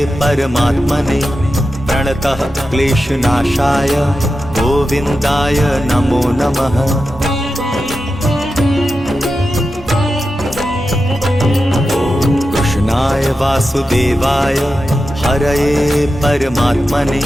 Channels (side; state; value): both; normal; correlation 0.91